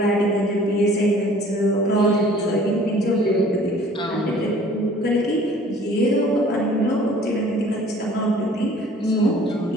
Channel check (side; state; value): both; normal; correlation 0.52